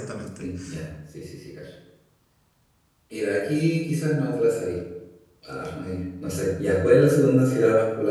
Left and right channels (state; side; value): identical; both; correlation 1.00